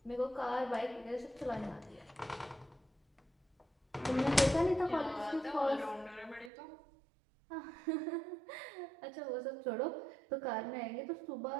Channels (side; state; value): left; drops out; at 6.5 s